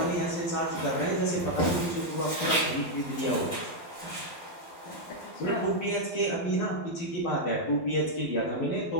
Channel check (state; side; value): late; right; 12 ms